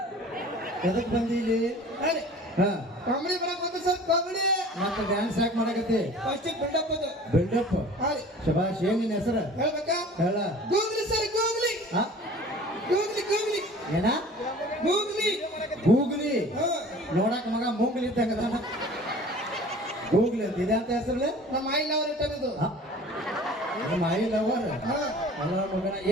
ಎದಕ್ ಬಂದಿಲ್ಲಿ ಹೇಳಿ ಹಾ ಕಾಮಿಡಿ ಮಾಡಕ್ ಬಂದ ಸರ್ ಕಾಮಿಡಿ ಮತ್ತೆ ಡ್ಯಾನ್ಸ್ ಯಾಕೆ ಮಾಡಕತ್ತಿ ಫಸ್ಟ್ ಬಿಲ್ಡಪ್ ಅದು ಬಿಲ್ಡಪ್ ಹೇಳಿ ಶಬಾಷ್ ಏನ್ ನಿನ್ನ ಹೆಸರು ಹೇಳ್ಬೇಕಾ ಹೇಳ ಗೂಗ್ಲಿ ಸರ್ ಗೂಗ್ಲಿ ಹಾ ಗೂಗ್ಲಿ ಗೂಗ್ಲಿ ಏನ ಗೂಗ್ಲಿ ಗೂಗ್ಲಿ ಹಾ ನೋಡಕ್ ಮಗ ಮೂಗ್ಲಿ ಇದ್ದಂಗ ಗೂಗ್ಲಿ ಅಂತ ಇದೆ ಅಂತ ಹೆಸರು ನಮ್ಮ ಆಯಿಲ್ ಅವ್ರ ಇಟ್ಟದ್ದು ನಮ್ಮ ಐ ಲವರ್ ಹಾ ಅಲ್ಲ ಮಗನ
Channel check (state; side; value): normal; both; correlation 0.45